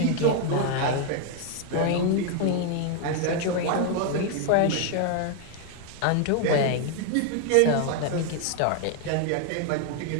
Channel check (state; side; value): different; both; correlation 0.00